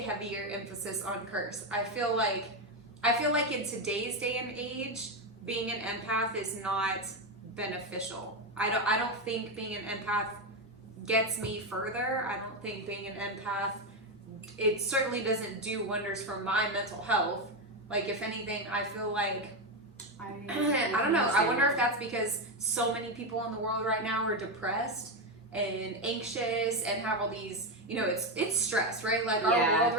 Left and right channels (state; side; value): normal; both; correlation 0.10